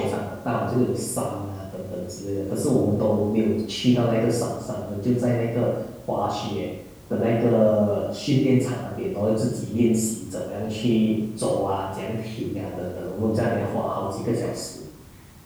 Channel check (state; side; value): identical; both; correlation 1.00